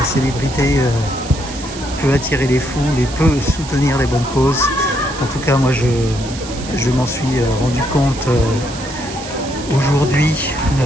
célébrité peut attirer les foules et peut soutenir les bonnes causes. En tout cas moi je m'en suis rendu compte aujourd'hui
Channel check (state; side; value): noise; right; hiss, 13 dB below the sound